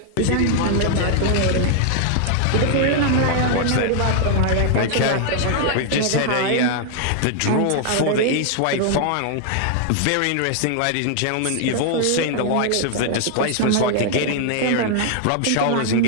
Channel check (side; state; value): both; different; correlation 0.00